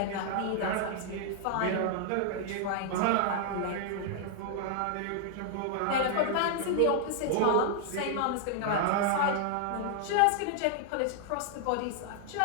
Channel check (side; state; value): both; different; correlation 0.00